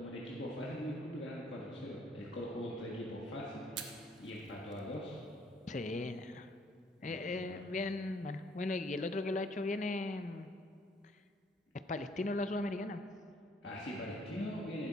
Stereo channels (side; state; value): both; normal; correlation 0.64